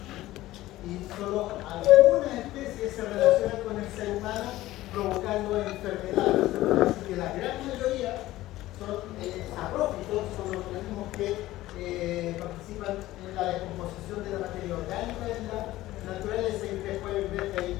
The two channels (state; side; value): quieter; right; 16.2 dB